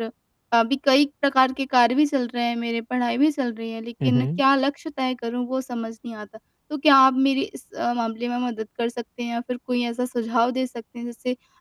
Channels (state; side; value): identical; both; correlation 1.00